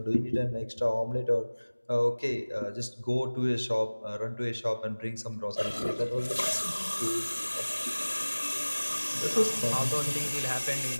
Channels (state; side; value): inverted; both; correlation -1.00